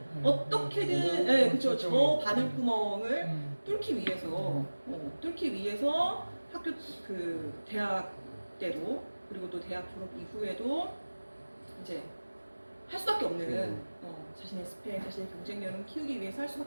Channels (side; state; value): both; inverted; correlation -1.00